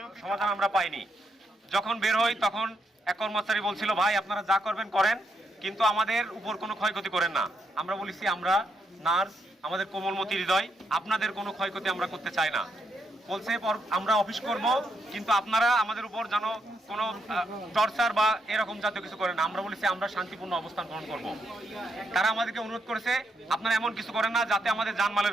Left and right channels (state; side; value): normal; both; correlation 0.79